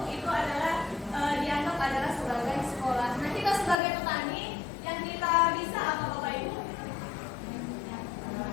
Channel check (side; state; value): right; drops out; at 3.8 s